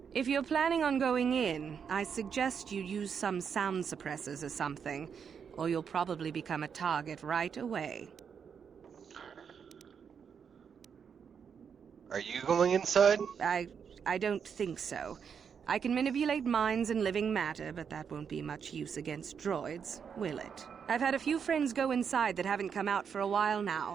If you're planning on going in, I suggest you use some sound suppressors or something, or you'll probably become a target right away. Are you going inside? I don't think so. I can manipulate minds and living matter, but that won't be much use against droids, will it? I've had a few friends go inside that haven't come out for a while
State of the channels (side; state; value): left; quieter; 6.9 dB